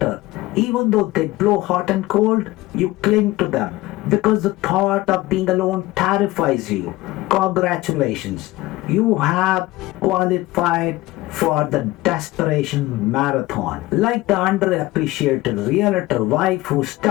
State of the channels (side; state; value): right; quieter; 18.8 dB